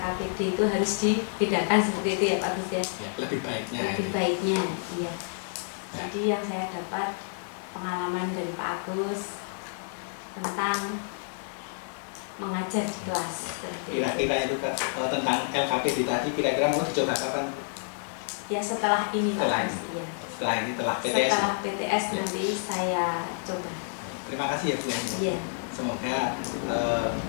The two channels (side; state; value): right; silent; 59 dB below the other